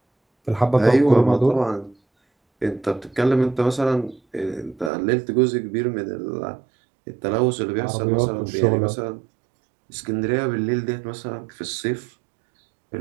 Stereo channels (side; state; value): left; drops out; at 4.9 s